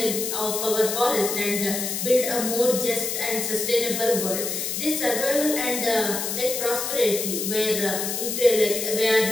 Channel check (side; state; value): left; noise; hiss, 3 dB below the sound